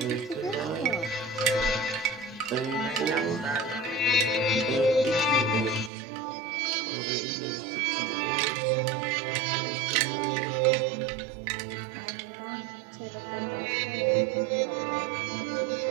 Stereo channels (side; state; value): left; drops out; at 5.9 s